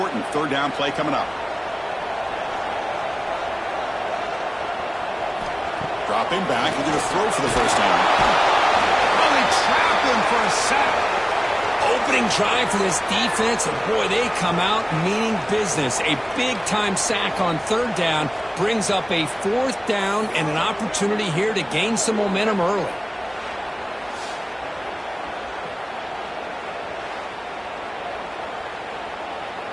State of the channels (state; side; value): identical; both; correlation 1.00